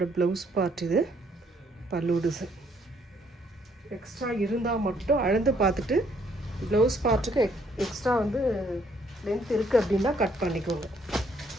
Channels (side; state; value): both; normal; correlation 0.67